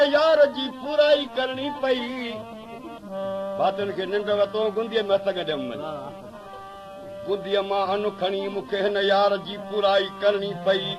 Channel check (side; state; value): both; identical; correlation 1.00